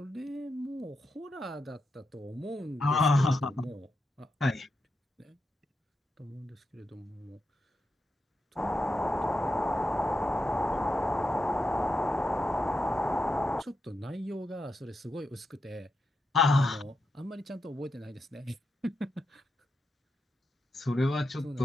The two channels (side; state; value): both; normal; correlation 0.86